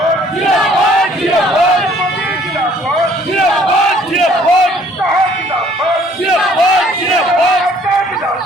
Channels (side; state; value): both; normal; correlation 0.59